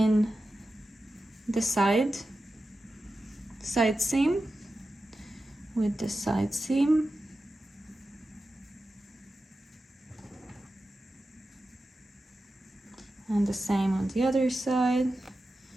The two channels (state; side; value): normal; both; correlation 0.92